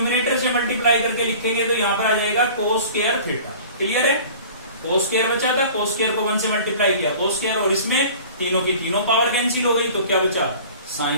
से मल्टीप्लाई करके लिखेंगे तो यहाँ पर आ जाएगा कोस स्क्वायर थीटा। क्लियर है। कोस स्क्वायर बचा था, कोस स्क्वायर को 1 से मल्टीप्लाई किया कोस स्क्वायर, और इसमें तीनों की तीनों पावर कैंसिल हो गई, तो क्या बचा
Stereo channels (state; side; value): inverted; both; correlation -0.44